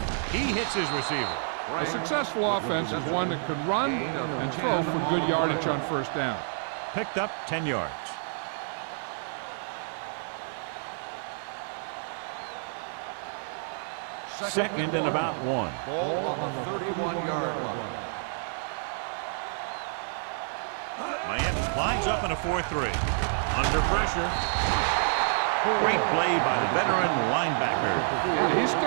He hits his receiver. A successful offense is one that can run and throw for good yardage on first down. Picked up 10 yards. Second and about 1. Ball on the 31-yard line. Miami lines up in a 4-3. Under pressure. Great play by the veteran linebacker. Yeah, he's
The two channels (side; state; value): left; silent; digital silence